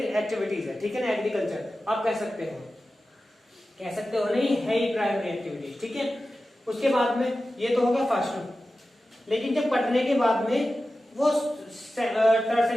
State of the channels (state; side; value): normal; both; correlation 0.94